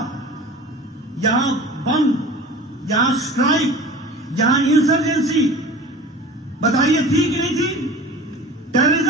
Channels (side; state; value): both; normal; correlation 0.38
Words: यहां बम, यहां स्ट्राइक, यहां इंसर्जेंसी, बताइए थी कि नहीं थी?